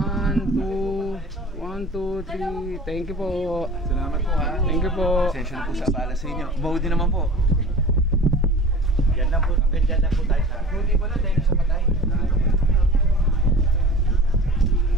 2, 3. Thank you po. Salamat po ha. Thank you po. Pasensya na po sa abala sa inyo. Maudi naman po. Yan lang po. Hanggang dyan lang po tayo sa... Maudi pala dahil sa patay.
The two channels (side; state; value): both; normal; correlation 0.40